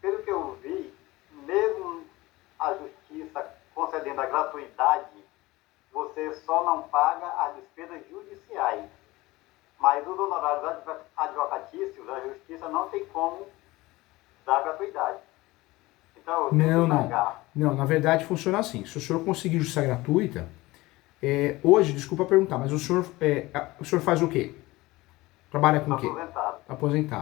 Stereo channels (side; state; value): right; quieter; 20.0 dB